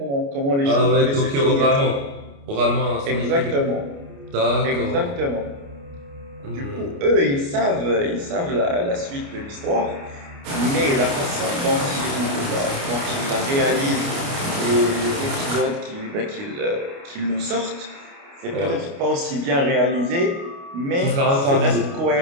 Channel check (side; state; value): left; late; 29 ms